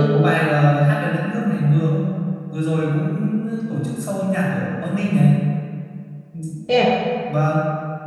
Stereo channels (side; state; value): both; identical; correlation 1.00